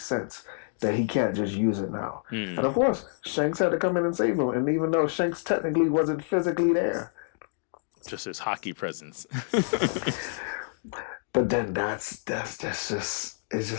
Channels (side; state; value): right; silent; digital silence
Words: sense that he can't just use it now. And of course, Shanks had to come in and save him. And even though Shanks technically wasn't physically there, just his hockey presence. But then that's just it's